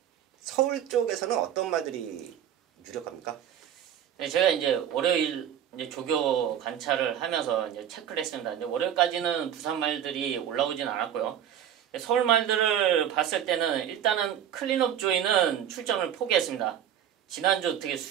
서울 쪽에서는 어떤 말들이 유력합니까? 네, 제가 이제 월요일 이제 조교 관찰을 하면서 이제 체크를 했습니다. 이제 월요일까지는 부산 말들이 올라오진 않았고요. 서울 말들을 봤을 때는 일단은 클린업 조이는 출전을 포기했습니다. 지난주 어떻게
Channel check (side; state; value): left; quieter; 9.9 dB